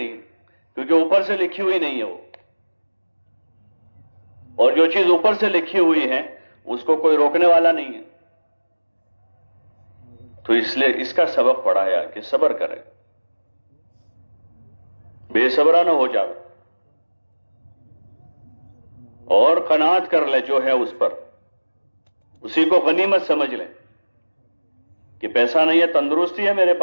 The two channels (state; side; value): inverted; both; correlation -1.00